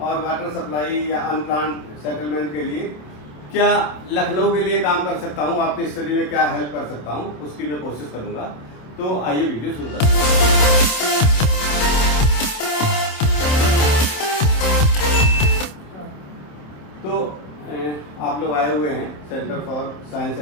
वाटर सप्लाई या अनप्लान्ड सेटलमेंट के लिए क्या लखनऊ के लिए काम कर सकता हूँ, आपकी स्टडी में क्या हेल्प कर सकता हूँ, उसकी मैं कोशिश करूँगा। तो आइए वीडियो शुरू करते हैं। तो आप लोग आए हुए हैं centre for science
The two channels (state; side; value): late; right; 27 ms